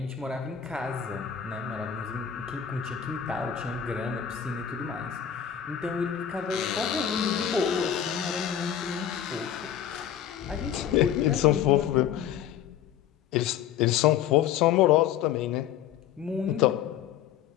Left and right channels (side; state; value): right; quieter; 9.6 dB